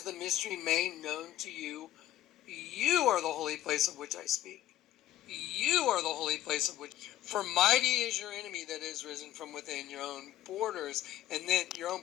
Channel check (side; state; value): right; quieter; 13.6 dB